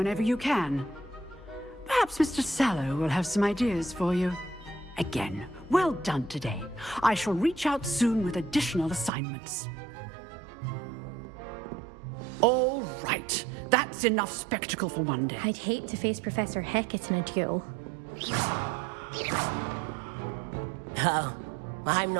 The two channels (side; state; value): left; drops out; at 9.1 s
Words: you can. Perhaps Mr. Sallow will have some ideas for you. Again, well done today. I shall reach out soon with additional assignments. All right. That's enough spectacle for one day. I'd hate to face Professor Hecat in a duel. Oh, I'm